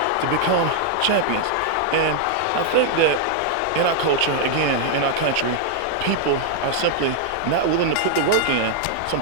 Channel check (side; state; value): both; different; correlation 0.00